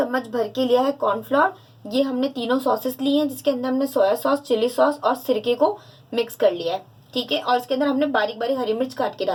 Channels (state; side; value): identical; both; correlation 1.00